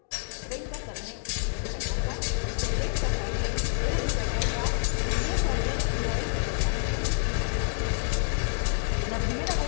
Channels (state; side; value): silent; right; digital silence